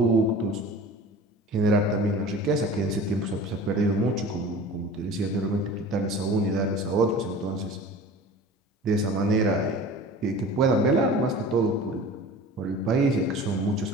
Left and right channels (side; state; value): both; normal; correlation 0.40